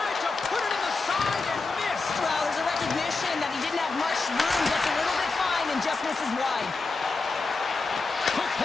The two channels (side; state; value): right; quieter; 3.9 dB